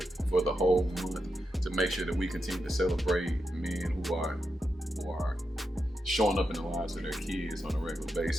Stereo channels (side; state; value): both; normal; correlation 0.86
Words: for the whole month to make sure that we continue to celebrate men who are showing up in the lives of their kids on a regular